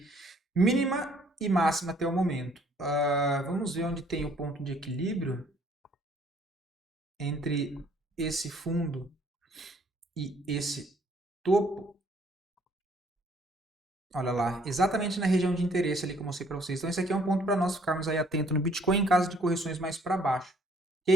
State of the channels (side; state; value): both; normal; correlation 0.62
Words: mínima e máxima até o momento. Vamos ver onde tem o ponto de equilíbrio entre esse fundo e esse topo. Olha lá, exatamente na região de interesse ali que eu mostrei para vocês. Então, esse aqui é um ponto para nós ficarmos aí atentos no Bitcoin em caso de correções mais para baixo.